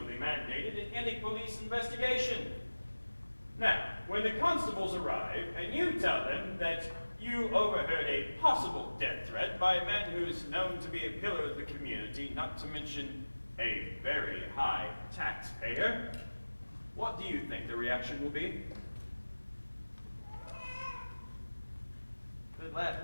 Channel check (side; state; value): both; inverted; correlation -1.00